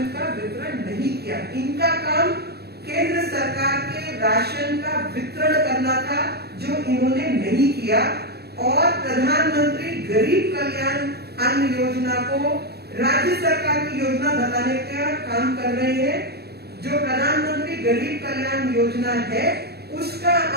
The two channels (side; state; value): left; late; 0.47 ms